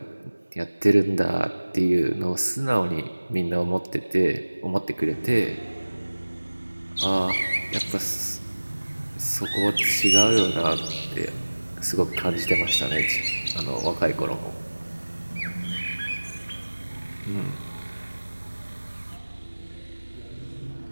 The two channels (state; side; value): inverted; both; correlation -1.00